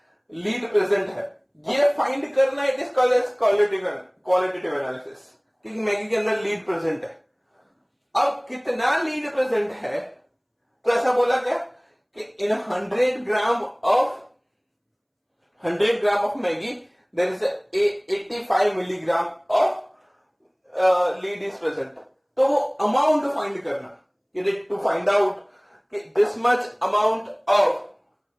लीड प्रेजेंट है. ये फाइंड करना it is called as qualitative analysis कि मैगी के अंदर लीड प्रेजेंट है. अब कितना लीड प्रेजेंट है? तो ऐसा बोला गया कि in 100 gram of Maggi there is 85 milligram of lead is present. तो वो अमाउंट फाइंड करना, टू फाइंड आउट कि this much amount of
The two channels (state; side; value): identical; both; correlation 1.00